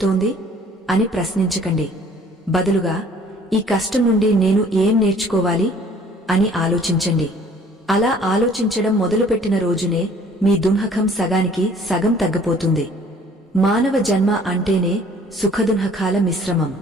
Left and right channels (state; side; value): normal; both; correlation 0.55